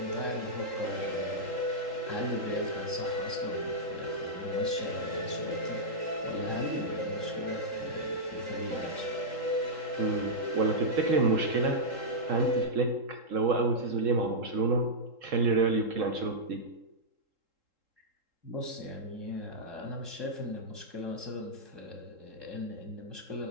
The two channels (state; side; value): late; left; 3.7 ms